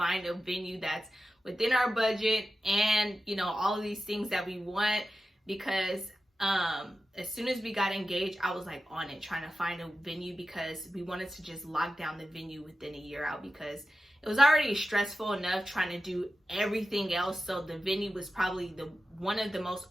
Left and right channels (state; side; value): normal; both; correlation 0.93